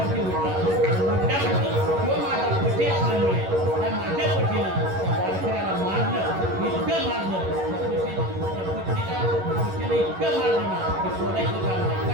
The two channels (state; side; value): late; left; 11 ms